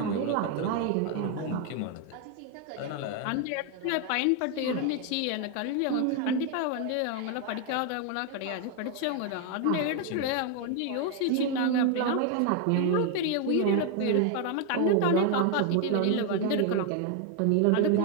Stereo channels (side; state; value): both; different; correlation 0.01